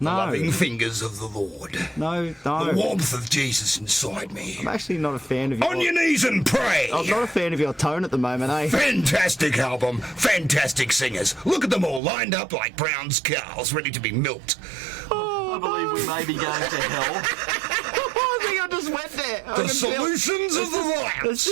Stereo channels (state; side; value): drops out; left; at 12.0 s